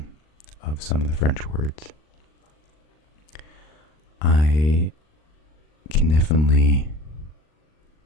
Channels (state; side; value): late; right; 39 ms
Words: of some of the French words. I can definitely